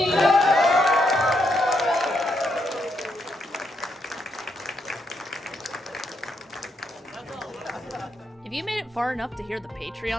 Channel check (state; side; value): normal; both; correlation 0.78